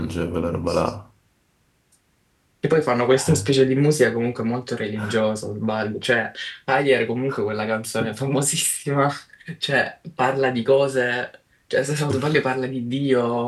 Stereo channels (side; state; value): both; identical; correlation 1.00